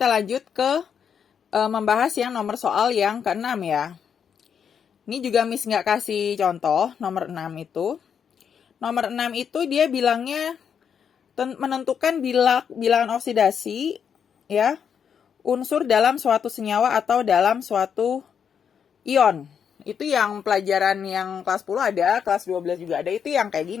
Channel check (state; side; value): quieter; right; 7.5 dB